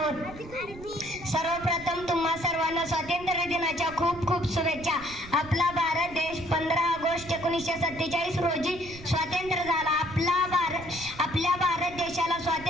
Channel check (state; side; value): noise; right; rumble, 16 dB below the sound